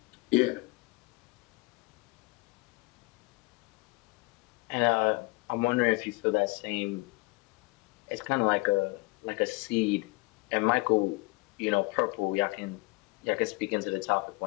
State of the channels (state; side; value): quieter; right; 25.3 dB